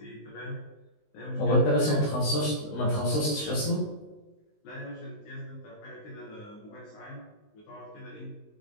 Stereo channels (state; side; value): late; right; 20 ms